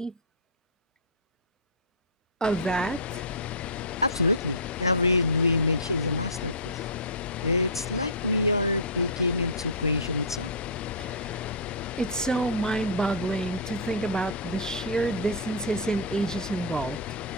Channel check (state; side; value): normal; both; correlation -0.16